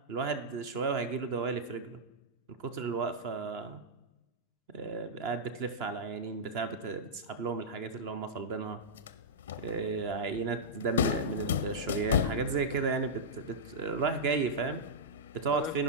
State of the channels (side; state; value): both; normal; correlation -0.10